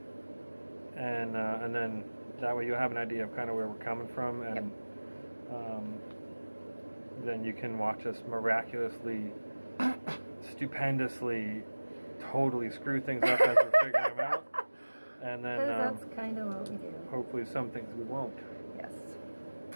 And then that way you'll have an idea of kind of where we're coming from, and then you can watch us miraculously, stupendously, totally screw things up as we're figuring them out. And then that's kind of what we do. Hopefully some things we won't. Yes.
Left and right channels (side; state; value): both; inverted; correlation -1.00